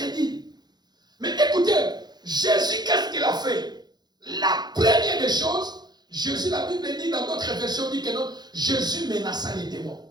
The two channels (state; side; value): late; left; 0.20 ms